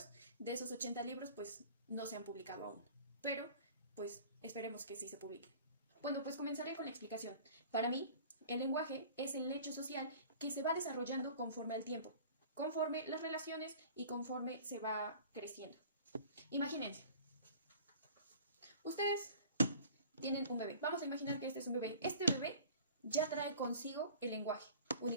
De esos 80 libros, pues no se han publicado aún, pero pues esperemos que sí se publiquen. Bueno, pues comenzaré con la explicación. Para mí, el lenguaje es el hecho social que se va desarrollando conforme al tiempo, conforme las relaciones y conforme se va creciendo. Imagínense, ustedes tienen un bebé. Vamos a imaginar que este es un bebé. Este bebé ya trae consigo el lenguaje,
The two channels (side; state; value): both; inverted; correlation -0.45